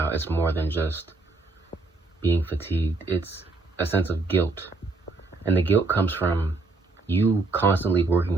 It's more than just being fatigued. It's a sense of guilt. And the guilt comes from you constantly working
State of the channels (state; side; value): quieter; left; 3.4 dB